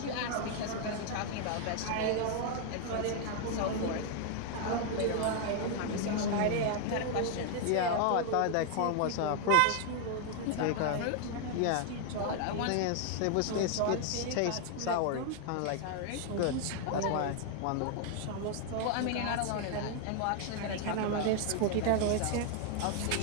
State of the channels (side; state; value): both; different; correlation 0.00